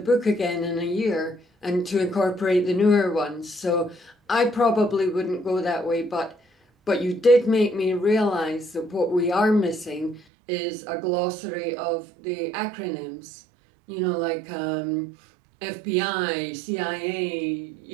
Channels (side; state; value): left; drops out; at 10.2 s